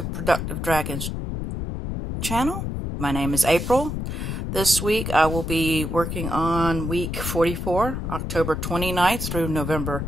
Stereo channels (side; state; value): left; noise; rumble, 4 dB below the sound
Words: Productive Dragons channel. My name is April. This week I will be working on week 44, October 29th through November